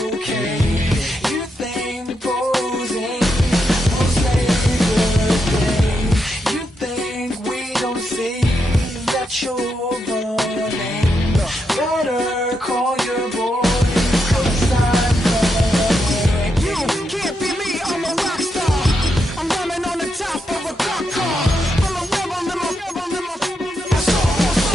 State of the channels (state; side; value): normal; both; correlation 0.83